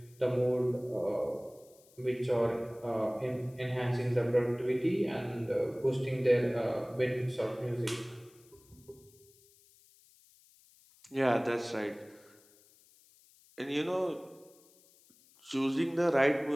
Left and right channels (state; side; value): noise; left; hiss, 28 dB below the sound